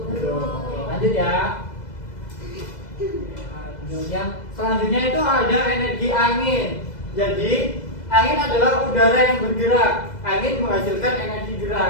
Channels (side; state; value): right; late; 2.0 ms